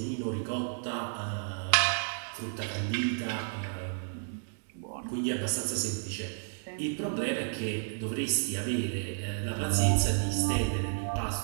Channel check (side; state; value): left; silent; digital silence